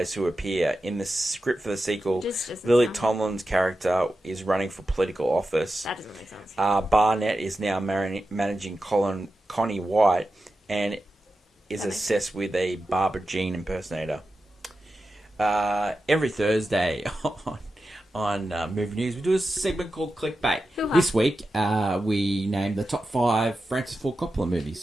who appear in the script for the sequel, Lily Tomlin's character is running for political office. That doesn't make sense. Barnett is now managing Connie White and is obsessed with a Barbara Jean impersonator. Every Thursday on Movie News, we do a segment called Clickbait. This week, we named the top 5 Francis Ford Coppola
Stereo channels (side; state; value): both; normal; correlation 0.91